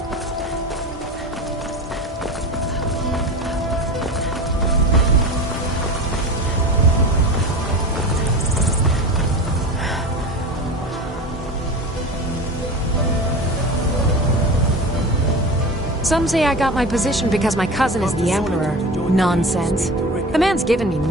Some say I got my position because my cousin is the Emperor. Nonsense. The man's given me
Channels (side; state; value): both; normal; correlation 0.31